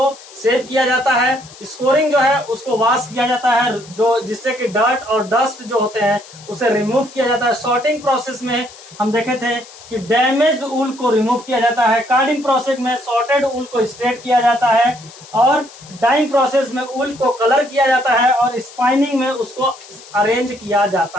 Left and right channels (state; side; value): noise; left; hiss, 20 dB below the sound